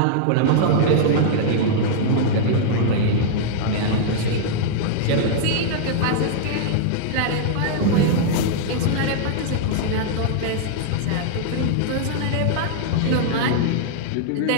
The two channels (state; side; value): different; both; correlation -0.01